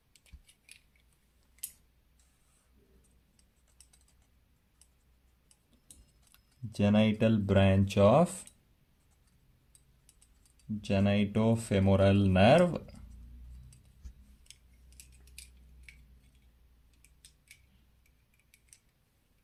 genital branch of genitofemoral nerve,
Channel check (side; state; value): both; identical; correlation 1.00